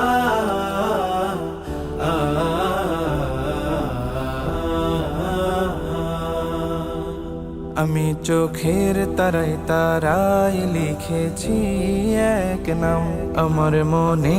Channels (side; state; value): both; identical; correlation 1.00